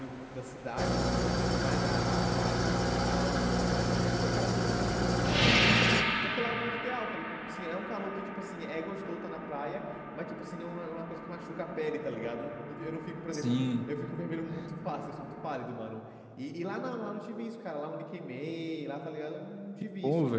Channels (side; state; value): both; identical; correlation 1.00